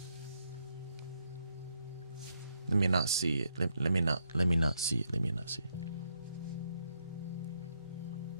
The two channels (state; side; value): inverted; both; correlation -0.77